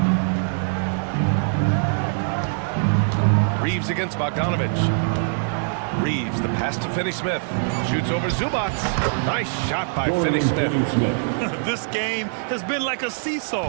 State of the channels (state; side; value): silent; left; digital silence